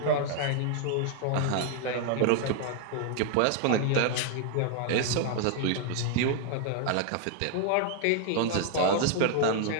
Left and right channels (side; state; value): both; different; correlation 0.00